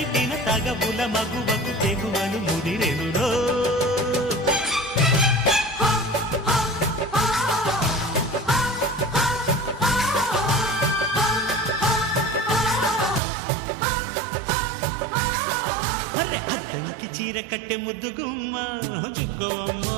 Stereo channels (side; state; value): left; drops out; at 13.2 s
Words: తగబుల మగువకు తెగువను ముదిరెనురో అద్దంకి చీర కట్టె ముద్దు గుమ్మ చుక్కవమ్మ